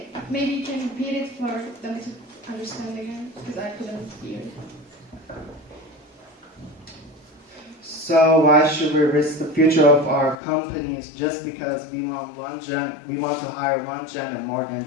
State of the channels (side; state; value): right; drops out; at 10.4 s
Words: maybe you can repeat it for them to understand again, because I couldn't hear it. So why should we risk the future of our companies just because we want to hire one gender more than